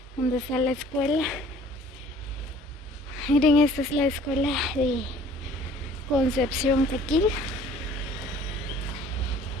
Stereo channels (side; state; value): both; normal; correlation 0.52